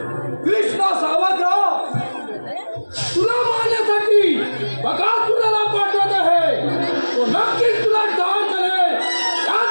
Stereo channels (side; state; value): both; inverted; correlation -1.00